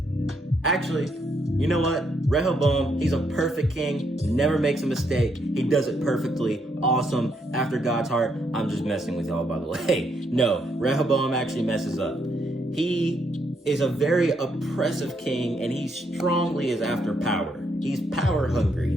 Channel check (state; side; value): normal; both; correlation 0.76